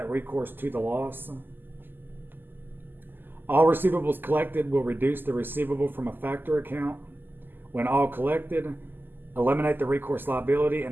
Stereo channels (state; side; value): late; left; 0.093 ms